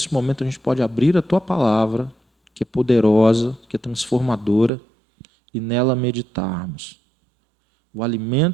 momento a gente pode abrir a Tua palavra, que é poderosa, que é transformadora, e nela meditarmos. O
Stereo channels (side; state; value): left; drops out; at 4.7 s